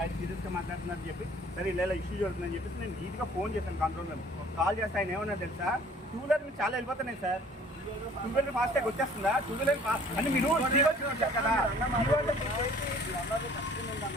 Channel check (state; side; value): normal; both; correlation 0.53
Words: సీరియస్గా మాట్లాడుతున్నారని చెప్పి, సరే ఇలా ఇష్యూ జరుగుతుందని చెప్పేసి నేను నీట్గా ఫోన్ చేశాను కంట్రోల్ రూమ్. కాల్ చేస్తే ఆయన ఏమన్నా తెలుసా, 2 వీలర్ మీరు చాలా వెళ్ళిపోతున్నాయి సార్, 2 వీలర్ ఫాస్ట్ ట్యాగ్ వచ్చేస్తుందా, 2 వీలర్ అంటే మీరు వచ్చారు కదా.